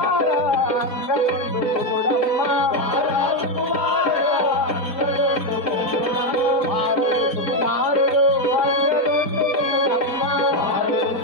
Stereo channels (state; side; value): late; right; 4.9 ms